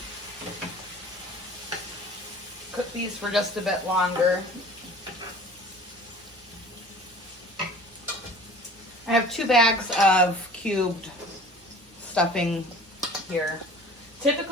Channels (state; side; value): normal; both; correlation 0.45